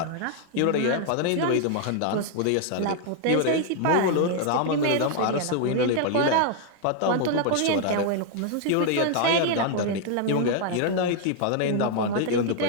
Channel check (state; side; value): different; both; correlation 0.00